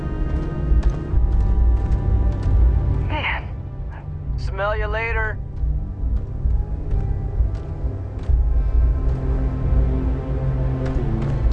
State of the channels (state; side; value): identical; both; correlation 1.00